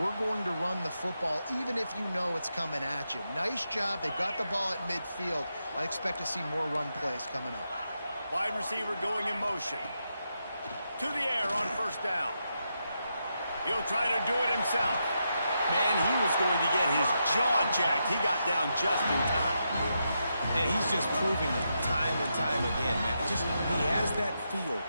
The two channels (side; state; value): both; inverted; correlation -0.84